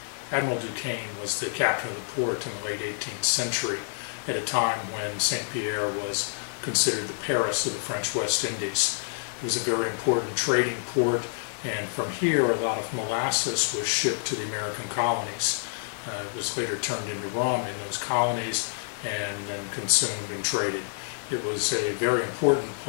Admiral Duquesne was the captain of the port in the late 18th century at a time when St. Pierre was considered the Paris of the French West Indies. It was a very important trading port, and from here a lot of molasses was shipped to the American colonies. It was later turned into rum in those colonies and then consumed and traded. It was a very important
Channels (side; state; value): right; silent; digital silence